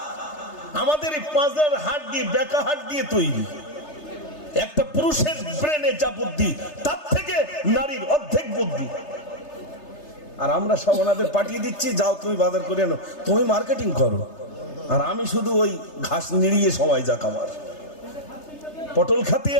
আমাদের এই 5 হাট দিয়ে, বেকা হাট দিয়ে তৈরি। একটা পুরুষের ব্রেনে যা বুদ্ধি, তার থেকে নারীর অর্ধেক বুদ্ধি। আর আমরা সব ওনাদের পাঠিয়ে দিচ্ছি, যাও তুমি বাজার করে আনো, তুমি মার্কেটিং করো। আর আমি শুধু ওই ঘাস নিড়িয়ে সময় যাক আমার। পটল খাতে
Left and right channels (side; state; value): right; late; 3.3 ms